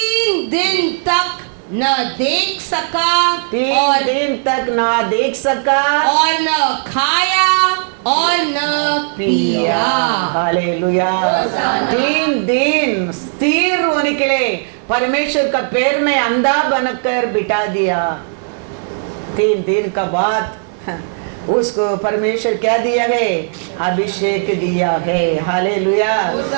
दिन तक न देख सका, 3 दिन तक ना देख सका और न खाया और न पिया। हालेलुया। 3 दिन स्थिर होने के लिए परमेश्वर का पैर में अंधा बनकर बिठा दिया। 3 दिन का बाद उसको परमेश्वर क्या दिया है? अभिषेक दिया है। हालेलुया।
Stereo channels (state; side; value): silent; left; digital silence